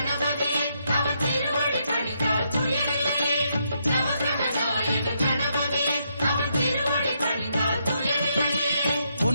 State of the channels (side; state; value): both; inverted; correlation -0.78